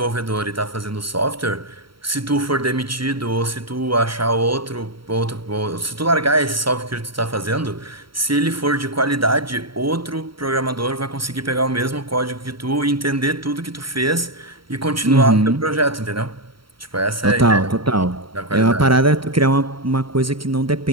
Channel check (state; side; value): late; left; 0.74 ms